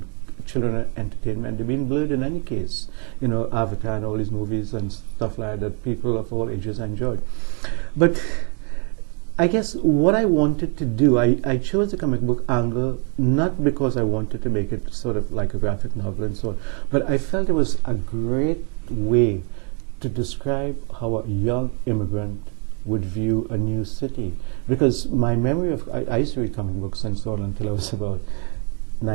children entertainment, they've been blurred in any case. Avatar and all these movies and stuff like that people of all ages enjoyed. But I guess what I wanted to do, I chose the comic book angle not because I wanted to make it sort of like a graphic novel and so on, but I felt it was a great way to describe how a young immigrant would view a new city. Because my memory of, I used to read comic books and so on until I was about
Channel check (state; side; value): quieter; left; 37.9 dB